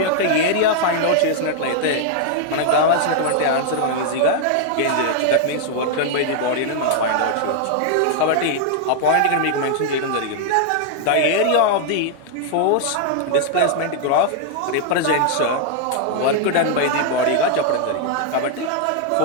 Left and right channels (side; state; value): both; different; correlation 0.00